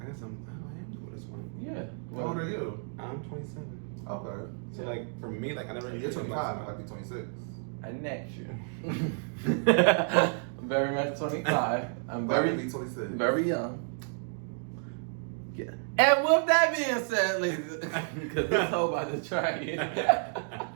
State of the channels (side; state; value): left; silent; 55 dB below the other